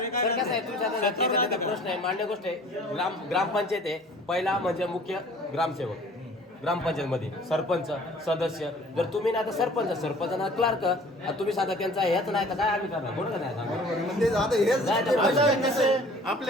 काय? तर कसं आहे तुमच्या आता शेतावर त्याचा राहतं का? प्रश्न आहे, मान्य गोष्ट आहे. ग्रामपंचायत आहे, पहिला म्हणजे मुख्य ग्रामसेवक, ग्रामपंचायतमध्ये सरपंच सदस्य. जर तुम्ही ना तर सरपंच ना क्लार्क तुम्ही साधा त्यांचा हेच नाही तर काय आम्ही करणार बोल का नाही सांगा. म्हणजे आता हेच नाही तर आता कसे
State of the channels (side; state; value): both; normal; correlation 0.50